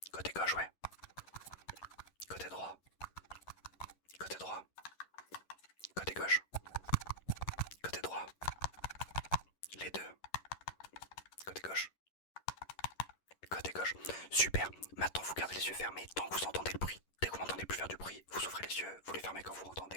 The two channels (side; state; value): right; late; 11 ms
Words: Côté gauche, ouais. Côté droit. Côté gauche. Côté droit. Les deux. Côté gauche. Super. Maintenant, vous gardez les yeux fermés tant que vous entendez le bruit. Dès que vous m'entendez plus faire du bruit, vous ouvrez les yeux, vous les fermez quand vous